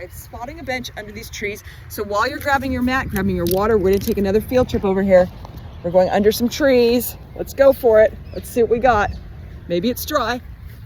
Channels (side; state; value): both; identical; correlation 1.00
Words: I'm spotting a bench under these trees. So while you're grabbing your mat, grabbing your water, we're gonna take another field trip over here. We're going under some trees. Let's go for it. Let's see what we got. Maybe it's dry.